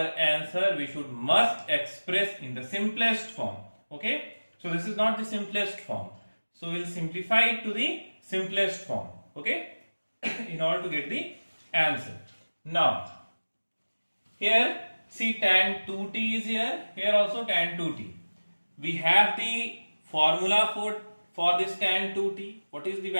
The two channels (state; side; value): inverted; both; correlation -1.00